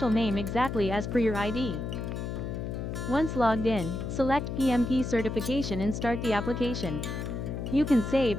name exactly as per your ID. Once logged in, select PMP certification and start the application. You can save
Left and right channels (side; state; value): left; noise; hum, 4 dB below the sound